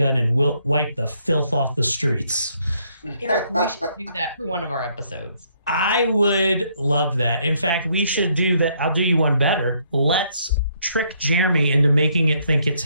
and wipe the filth off the streets? Eric, we should do that for one of our episodes. I would love that. In fact, we should do that. I'll do you one better. Let's trick Jeremy into making it think it's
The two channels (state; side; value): inverted; both; correlation -0.70